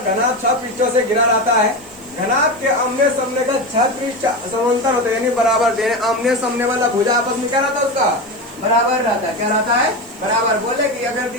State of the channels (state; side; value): noise; right; hiss, 24 dB below the sound